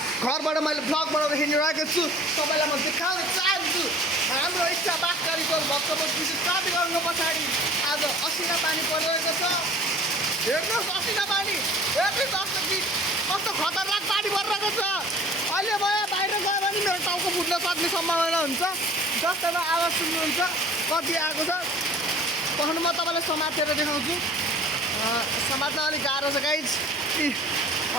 घरबाट मैले vlog बनाउँदै हिँडिरहेको छु। तपाईलाई म देखाउन चाहन्छु हाम्रो इच्छा बागकारीको भक्तपुर विद्युत प्राधिकरणको पछाडि आज असिना पानी परिरहेको छ। हेर्नुहोस् असिना पानी, हेर्नुहोस् कस्तो खतरनाक पानी परिरहेको छ। अहिले म बाहिर गयो भने मेरो टाउको फुट्न सक्ने सम्भावना हुन्छ। जस्तैमा आवाज सुन्नुहुन्छ कति आएको छ। पछाडि म तपाईलाई समातेर देखाउँछु। समात्न अलिक गाह्रो छ गाइज।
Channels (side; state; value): both; normal; correlation 0.48